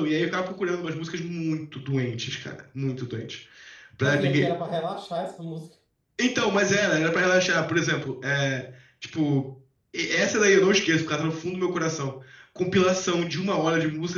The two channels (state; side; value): identical; both; correlation 1.00